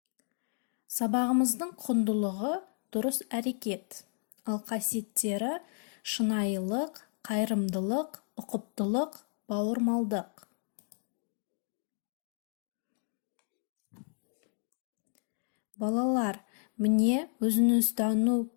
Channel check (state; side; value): silent; right; 56 dB below the other